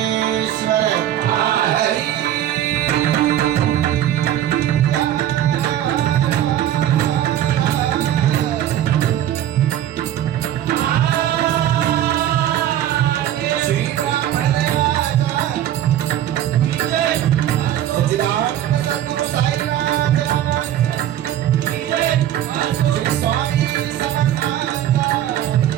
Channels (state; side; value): quieter; left; 11.8 dB